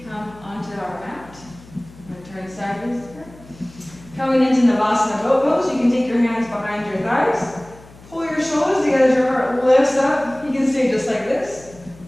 come onto our mat. I'm going to turn sideways here. Coming into Navasana boat pose, you can take your hands behind your thighs. Pull your shoulders together as your heart lifts up. You can stay just like this.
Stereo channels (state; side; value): noise; left; hum, 22 dB below the sound